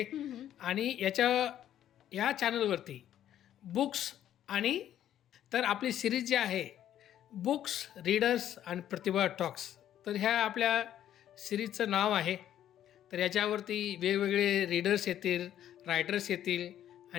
आणि या चॅनलवरती बुक्स आणि तर आपली सिरीज जी आहे बुक्स, रीडर्स आणि प्रतिभा टॉक्स, तर ह्या आपल्या सिरीजचं नाव आहे. तर याच्यावरती वेगवेगळे रीडर्स येतील, रायटर्स येतील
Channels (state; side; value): quieter; right; 11.2 dB